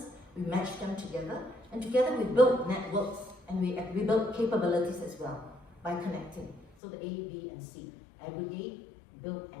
we match them together, and together we build networks and we build capabilities as well by connecting. So the A, B, and C, aggregate, build,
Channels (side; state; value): right; drops out; at 6.7 s